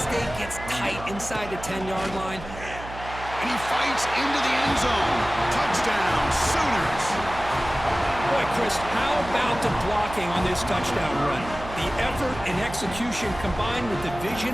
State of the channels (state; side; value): noise; right; hum, 12 dB below the sound